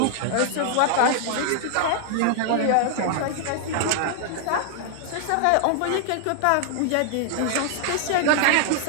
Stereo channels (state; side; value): different; both; correlation 0.00